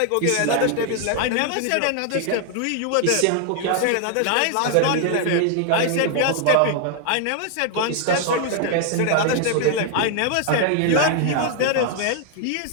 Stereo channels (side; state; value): both; different; correlation 0.00